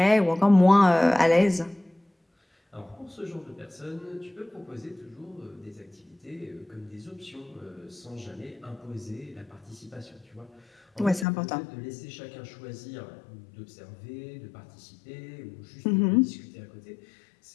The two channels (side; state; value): right; drops out; at 11.2 s